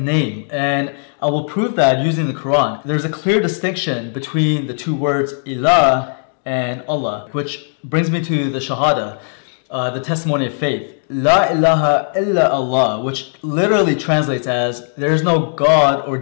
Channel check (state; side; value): silent; right; digital silence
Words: and I will prove that using the Quran. There's a clear distinction between the two words Ilah and Allah, which brings me to the Shahada, the testimony of faith. La ilaha illa Allah, which literally translates as there is no God or